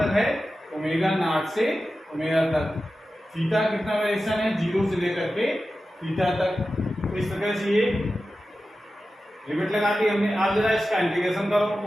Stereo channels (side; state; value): both; normal; correlation 0.93